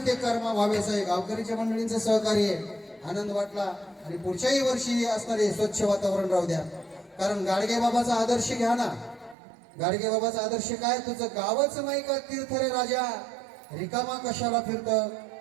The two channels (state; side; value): drops out; left; at 9.3 s